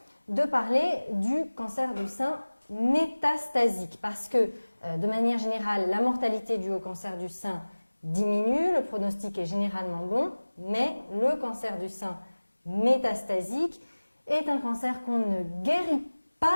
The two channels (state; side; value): inverted; both; correlation -1.00